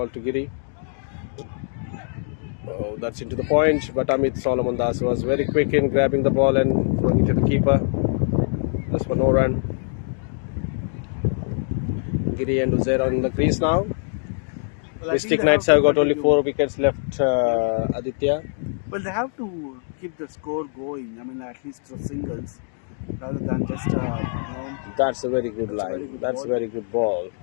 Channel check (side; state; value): right; silent; digital silence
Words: to Giri. Oh, that's into the point, but Amit Solomon Das was very quick in grabbing the ball and throwing it to the keeper. Just for no run. Giri and Uzair on the crease now. Well, I think Mystic they Knights have have to got only continue. 4 wickets left, Aditya. Well, they have to keep the score going. I mean, at least for singles, rather than just That's a very good that's a line. very good That's ball. a very good ball.